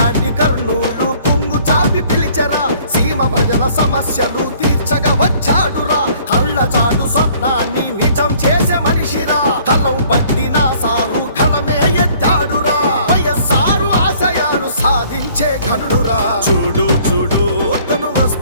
కర్నూలు పొంగు చాపి పిలిచరా, సీమ ప్రజల సమస్యలు తీర్చగా వచ్చాడురా. కళ్ళ చాటు స్వప్నాన్ని నిజం చేసే మనిషిరా, కలం పట్టిన సారు కలమే ఎత్తాడురా. వైఎస్ఆర్ ఆశయాలు సాధించే ఘనుడురా. చూడు చూడు తను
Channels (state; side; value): inverted; both; correlation -0.57